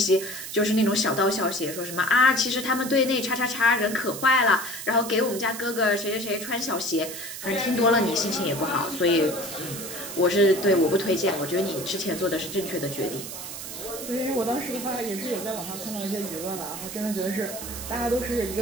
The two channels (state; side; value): noise; right; hiss, 9 dB below the sound